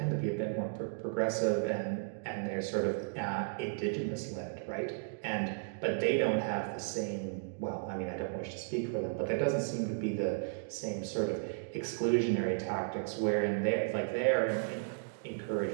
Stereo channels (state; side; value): silent; left; digital silence